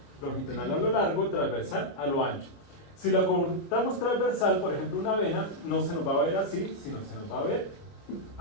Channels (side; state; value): right; late; 29 ms